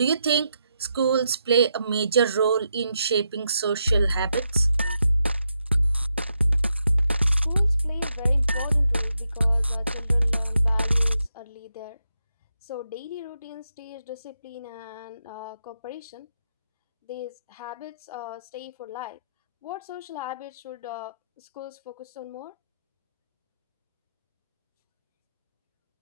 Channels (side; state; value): both; inverted; correlation -0.83